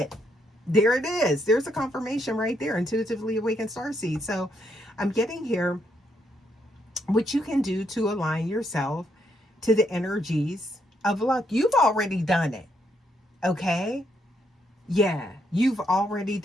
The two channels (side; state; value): both; normal; correlation 0.75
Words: There it is. There's a confirmation right there. Intuitively awakened starseed. So I'm getting here what you can do to align yourself to the energies of luck. You've already done it. Okay? Yeah, you've already